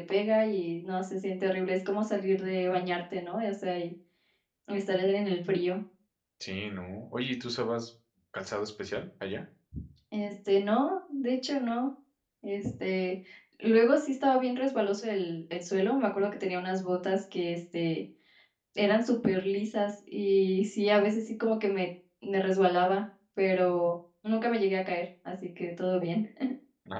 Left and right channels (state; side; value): identical; both; correlation 1.00